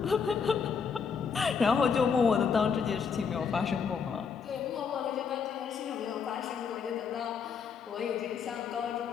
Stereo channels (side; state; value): right; quieter; 6.2 dB